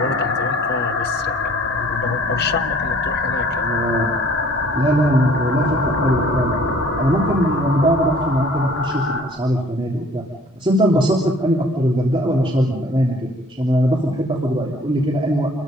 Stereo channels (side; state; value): both; normal; correlation 0.54